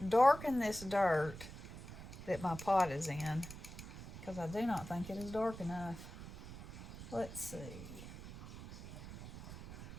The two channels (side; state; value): right; noise; rumble, 12 dB below the sound